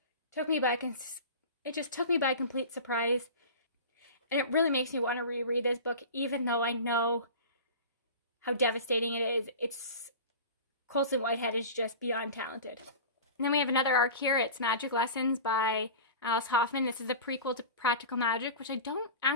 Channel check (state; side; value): inverted; both; correlation -0.34